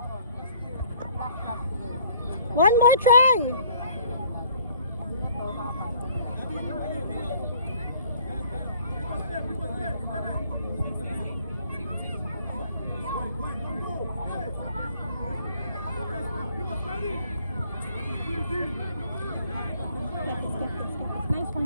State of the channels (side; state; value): both; inverted; correlation -0.58